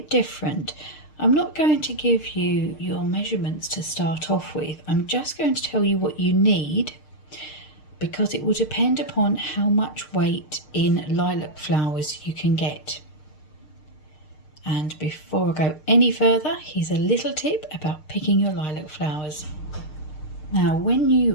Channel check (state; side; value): late; right; 6.6 ms